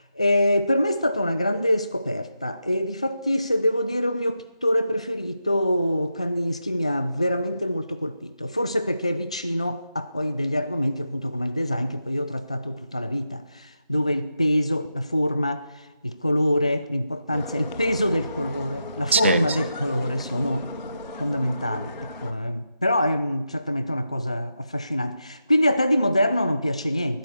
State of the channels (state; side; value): inverted; both; correlation -0.87